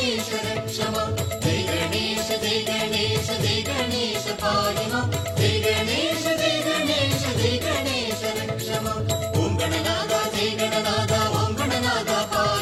रक्ष मां जय गणेश जय गणेश जय गणेश पाहि मां जय गणेश जय गणेश जय गणेश रक्ष मां ओम गणनादा जय गणनादा ओम गणनादा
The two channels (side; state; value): both; identical; correlation 1.00